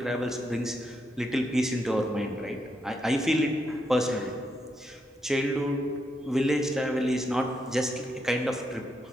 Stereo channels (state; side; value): normal; both; correlation 0.80